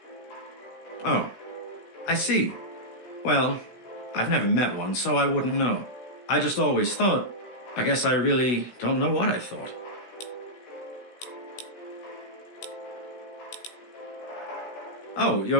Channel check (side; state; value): right; late; 16 ms